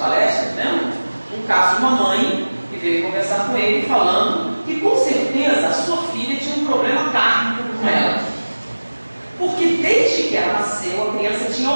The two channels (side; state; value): both; inverted; correlation -1.00